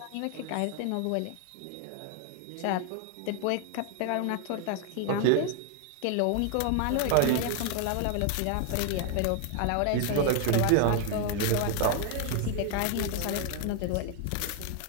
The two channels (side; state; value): both; different; correlation 0.00